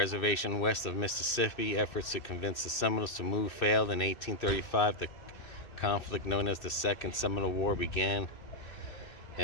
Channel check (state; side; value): late; right; 2.6 ms